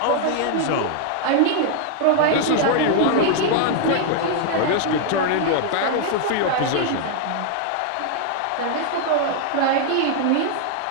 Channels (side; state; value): both; different; correlation 0.00